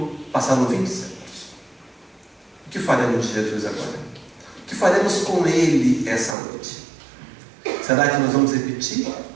20 séculos. O que faremos de Jesus agora? O que faremos com Ele essa noite? Será que nós vamos repetir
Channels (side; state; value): left; drops out; at 6.4 s